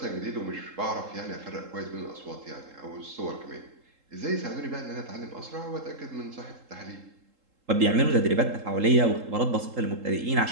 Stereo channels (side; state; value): left; late; 3.7 ms